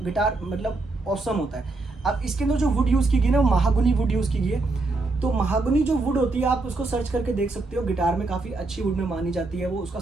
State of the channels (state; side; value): quieter; left; 3.3 dB